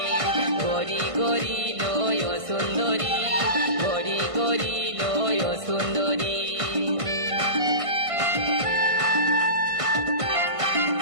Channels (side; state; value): left; late; 1.5 ms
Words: গরি গরি লয় সুন্দরী, গরি গরি লয় সুন্দরী।